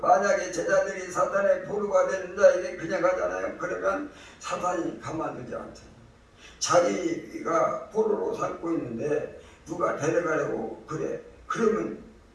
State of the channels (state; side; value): identical; both; correlation 1.00